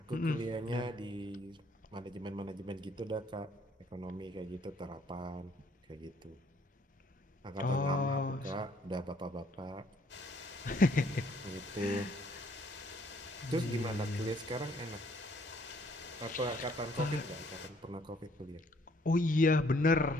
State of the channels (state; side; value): normal; both; correlation 0.64